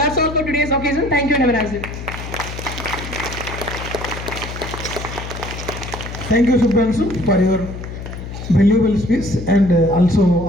all for today's occasion. Thank you and have a nice day. Thank you, Subhranshu, for your valuable speech and also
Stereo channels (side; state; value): left; noise; hum, 9 dB below the sound